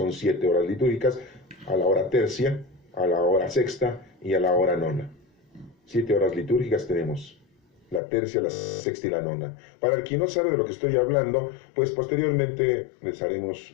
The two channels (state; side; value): drops out; right; at 8.0 s